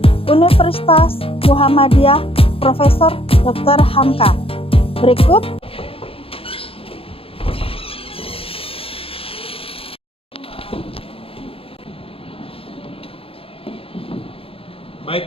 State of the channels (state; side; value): late; right; 0.27 ms